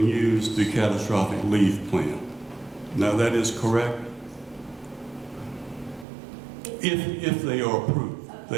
use the catastrophic leave plan. Now that is correct? If they are approved,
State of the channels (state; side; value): drops out; left; at 6.1 s